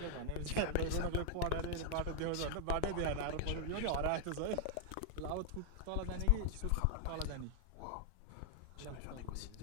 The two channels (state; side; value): different; both; correlation 0.00